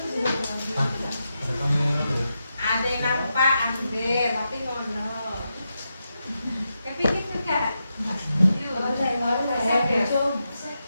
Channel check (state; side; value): inverted; both; correlation -0.87